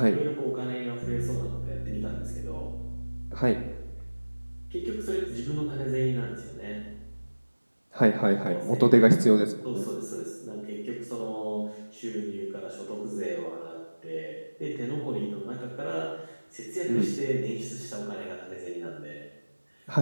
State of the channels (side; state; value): both; inverted; correlation -1.00